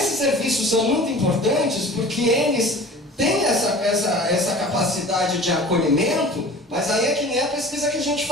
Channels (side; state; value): both; normal; correlation 0.41